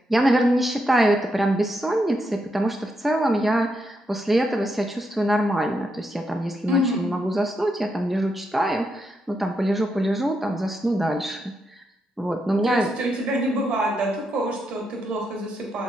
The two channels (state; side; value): normal; both; correlation 0.82